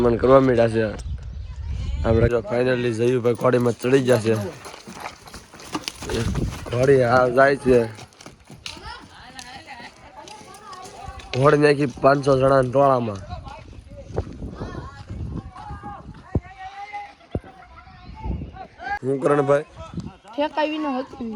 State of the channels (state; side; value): identical; both; correlation 1.00